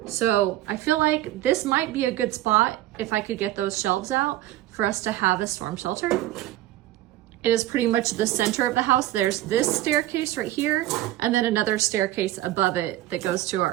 So I feel like this might be a good spot if I could get those shelves out for us to have a storm shelter. It is pretty much the center of the house. There's this staircase right here, and then another staircase above it that goes to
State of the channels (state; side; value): quieter; left; 15.0 dB